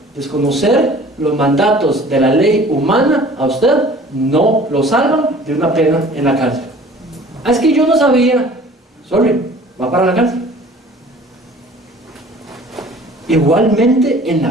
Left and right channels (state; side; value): normal; both; correlation 0.49